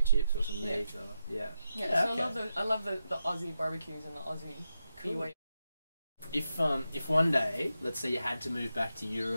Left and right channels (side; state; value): both; inverted; correlation -0.87